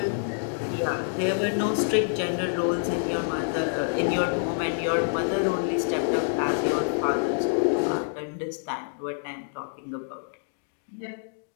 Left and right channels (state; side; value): silent; right; digital silence